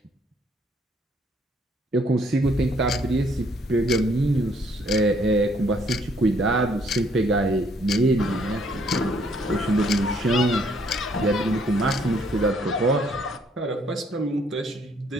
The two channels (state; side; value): normal; both; correlation 0.66